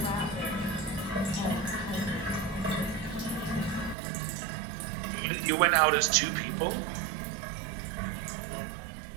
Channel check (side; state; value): left; drops out; at 4.0 s